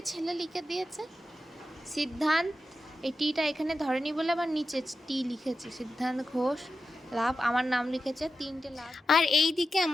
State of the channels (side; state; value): both; normal; correlation 0.90